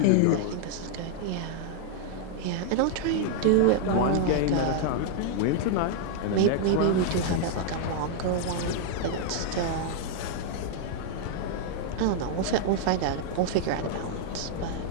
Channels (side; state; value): both; different; correlation -0.01